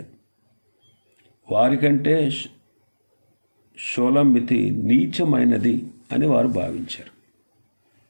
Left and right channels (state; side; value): inverted; both; correlation -1.00